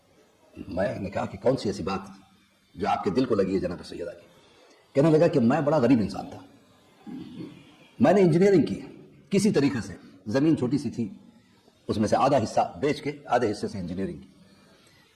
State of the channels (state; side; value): identical; both; correlation 1.00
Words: میں نے کہا کہ کون سی ایسی بات جو آپ کے دل کو لگی ہے جناب سیدہ کی؟ کہنے لگا کہ میں بڑا غریب انسان تھا، میں نے انجینئرنگ کی، کسی طریقے سے زمین چھوٹی سی تھی، اس میں سے آدھا حصہ بیچ کے آدھے حصے سے انجینئرنگ کی.